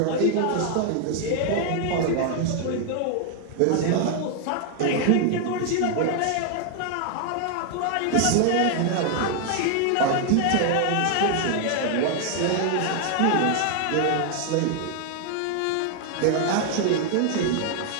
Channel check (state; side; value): different; both; correlation 0.00